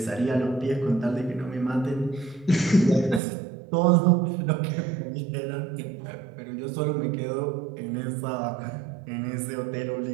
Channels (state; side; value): drops out; left; at 3.2 s